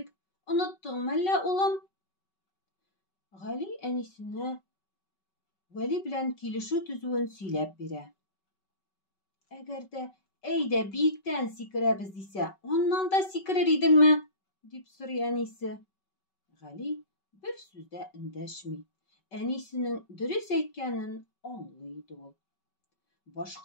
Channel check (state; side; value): late; right; 5.3 ms